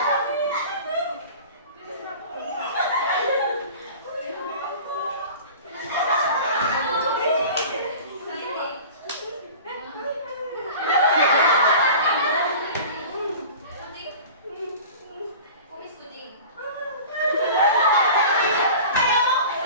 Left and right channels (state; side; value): inverted; both; correlation -0.39